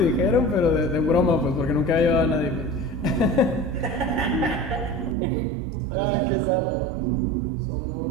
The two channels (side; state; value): left; drops out; at 5.2 s